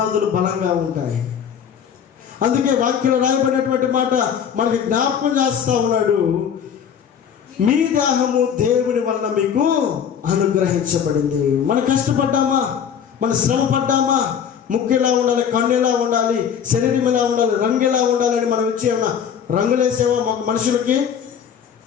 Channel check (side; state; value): right; quieter; 8.0 dB